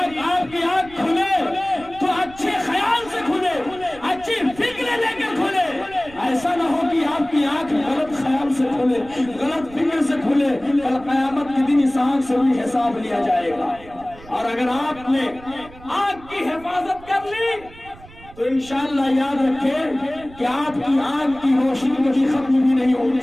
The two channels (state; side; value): noise; right; rumble, 20 dB below the sound